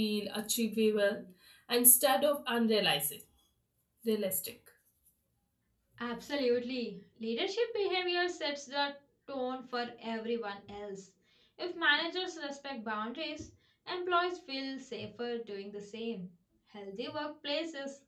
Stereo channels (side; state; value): both; identical; correlation 1.00